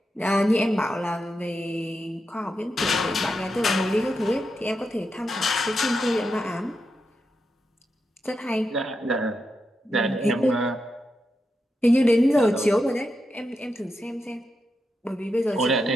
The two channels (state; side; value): normal; both; correlation 0.86